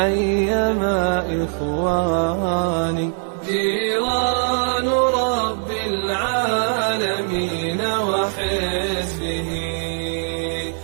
إخواني. جيران رب العالمين وحزبه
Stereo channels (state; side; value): silent; left; 65 dB below the other